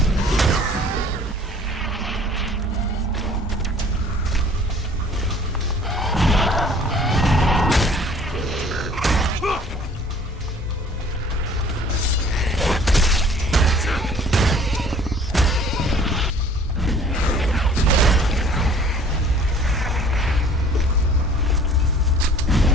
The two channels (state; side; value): normal; both; correlation 0.52